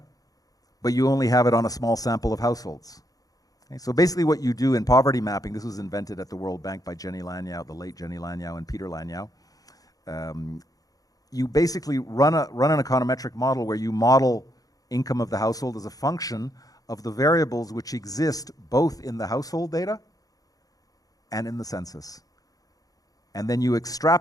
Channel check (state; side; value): late; right; 0.18 ms